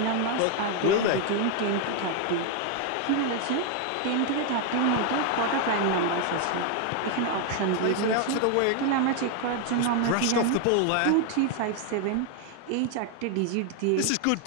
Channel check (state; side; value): different; both; correlation 0.01